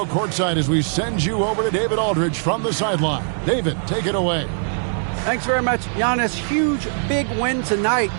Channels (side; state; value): left; silent; digital silence